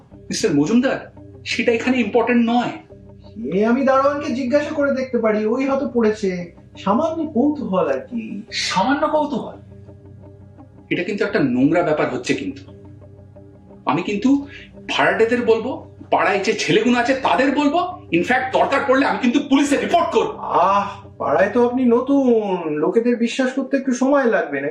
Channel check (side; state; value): both; identical; correlation 1.00